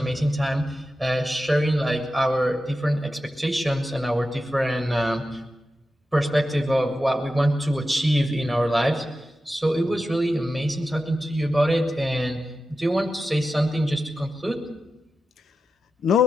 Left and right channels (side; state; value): both; normal; correlation 0.91